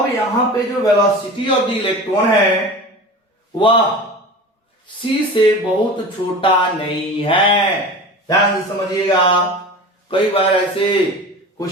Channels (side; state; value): both; normal; correlation 0.34